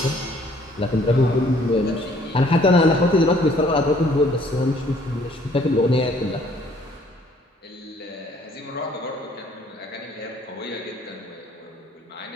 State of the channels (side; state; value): both; normal; correlation 0.60